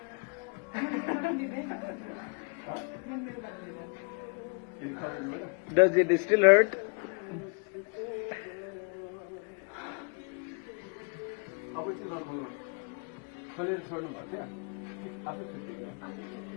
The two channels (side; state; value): right; quieter; 38.9 dB